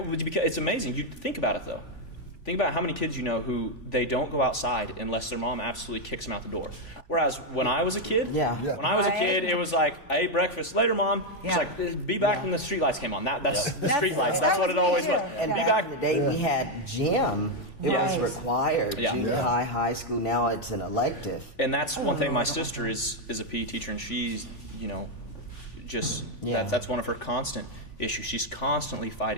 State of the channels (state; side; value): late; right; 3.5 ms